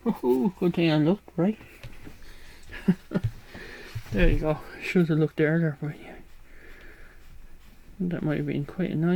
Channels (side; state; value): both; identical; correlation 1.00